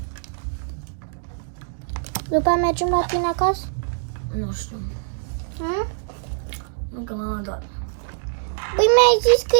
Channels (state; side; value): silent; left; digital silence